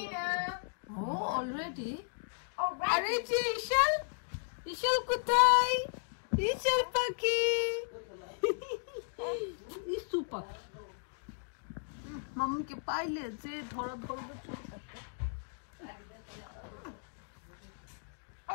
ও অলরেডি। আরে যে ঈশান, ঈশান কোথায়? ঈশান পাখি, ইসু পাখি মামুকে পাইলে যে ধরা ধরবে চুল থাকে।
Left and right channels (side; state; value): right; silent; digital silence